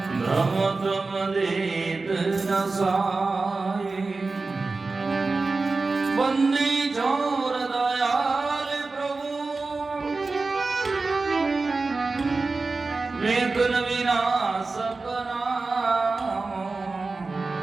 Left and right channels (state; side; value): quieter; left; 3.8 dB